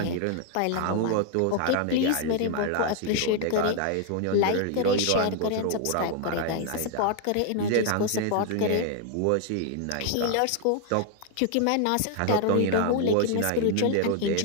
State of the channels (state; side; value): different; both; correlation 0.00